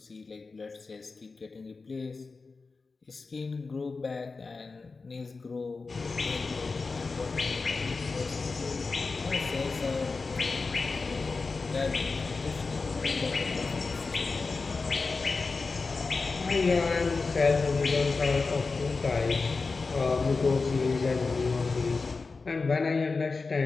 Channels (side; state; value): right; quieter; 4.2 dB